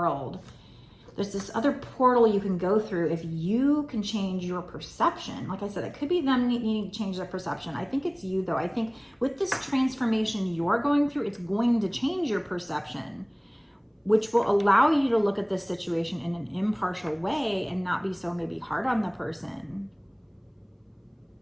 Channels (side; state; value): both; identical; correlation 1.00